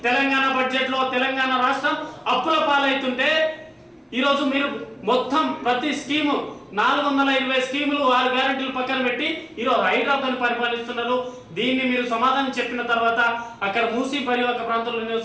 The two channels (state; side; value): identical; both; correlation 1.00